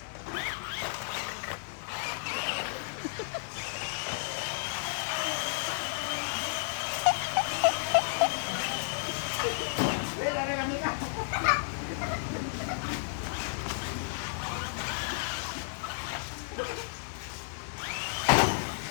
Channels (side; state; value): right; silent; digital silence